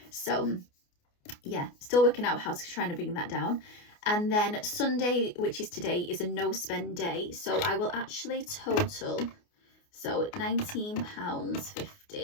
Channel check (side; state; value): right; late; 29 ms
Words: So yeah, still working out how to try and bring that down. And then Sunday, which is today, is a no spend day, so I will actually total, so